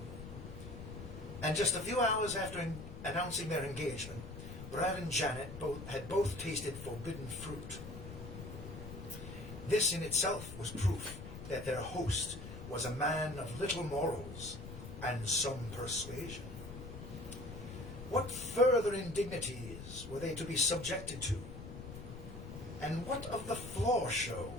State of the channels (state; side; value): noise; left; rumble, 11 dB below the sound